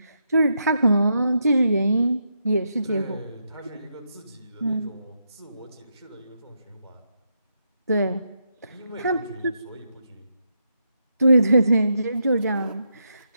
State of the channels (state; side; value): inverted; both; correlation -0.82